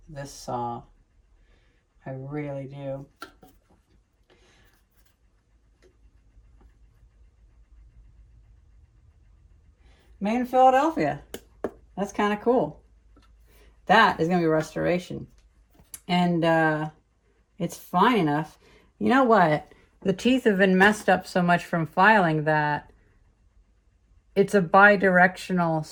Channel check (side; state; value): both; identical; correlation 1.00